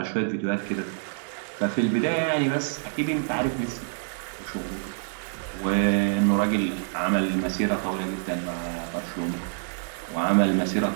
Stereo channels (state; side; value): silent; left; digital silence